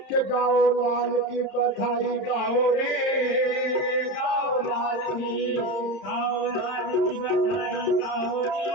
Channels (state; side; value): late; right; 31 ms